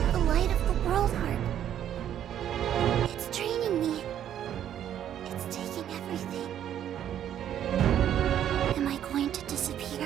The light of the World Heart. It's draining me. It's taking everything. Am I going to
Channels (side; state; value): left; quieter; 10.4 dB